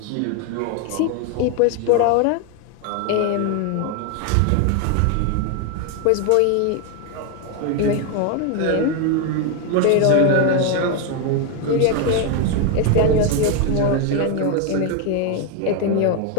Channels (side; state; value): both; different; correlation 0.01